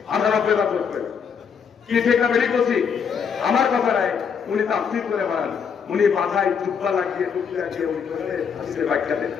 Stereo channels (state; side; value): quieter; right; 6.7 dB